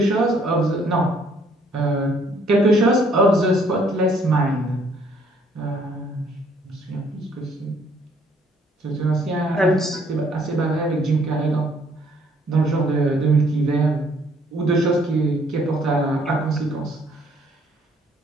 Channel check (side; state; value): both; normal; correlation 0.64